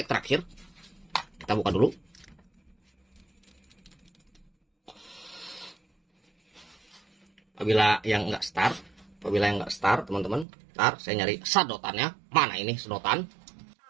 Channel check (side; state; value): left; drops out; at 10.5 s